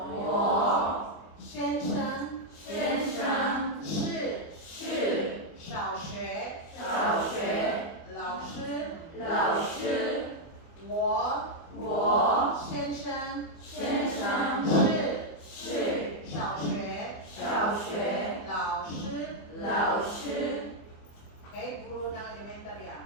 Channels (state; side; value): late; right; 24 ms